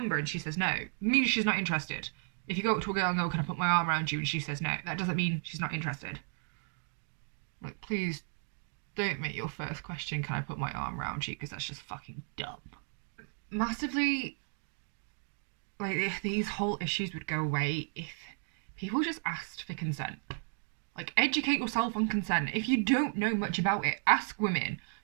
And she says no, it means she's not interested. If you go up to a girl and go, can I put my arm around you? And she says no, that doesn't mean she's not interested. Like, please don't make your first question, can I put my arm around you? Because that's just fucking dumb. Massively, like, if these whole issues would go away if people just asked for consent. Like, educate yourself on consent. If you don't know much about it, ask women.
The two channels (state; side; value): silent; left; 55 dB below the other